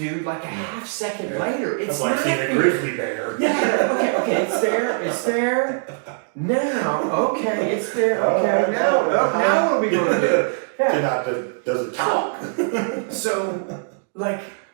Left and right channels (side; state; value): left; silent; digital silence